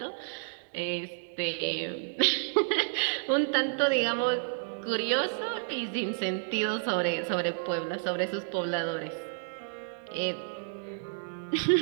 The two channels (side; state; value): left; silent; digital silence